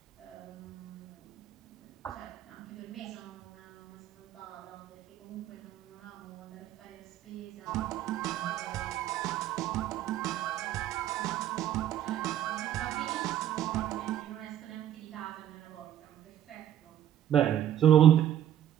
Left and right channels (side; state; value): left; quieter; 11.2 dB